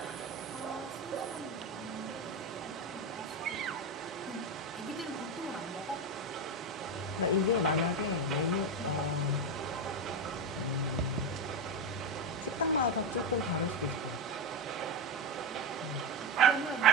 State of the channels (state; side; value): normal; both; correlation 0.13